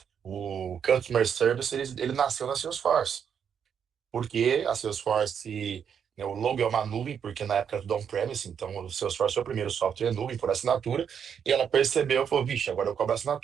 o Customer Service ele nasceu na Salesforce. Porque a Salesforce, né, o logo é uma nuvem, porque na época era tudo on-premise, então o Salesforce foi o primeiro software nuvem por assinatura, e ela percebeu e falou, vixe, agora eu cobro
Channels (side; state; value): left; quieter; 7.7 dB